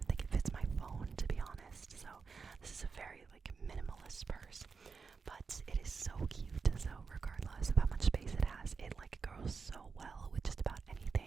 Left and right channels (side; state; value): left; quieter; 5.1 dB